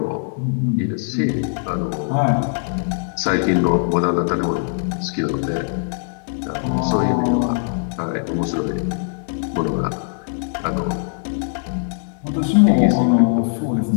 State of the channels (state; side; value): silent; right; digital silence